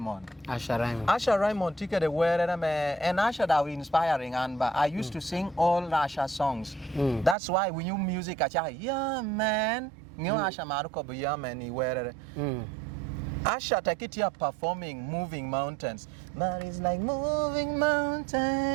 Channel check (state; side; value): drops out; left; at 7.4 s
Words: Asha Raymond took the word and Asha that was inspiring and I used to sing all Asha songs. That's why we knew music Asha, yeah man, new Asha Maruko yeah man he wear. Asha take it here performing Moving Mountains. But it's like moving mountains.